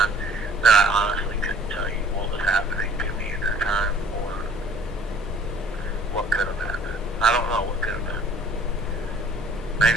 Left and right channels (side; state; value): both; normal; correlation 0.52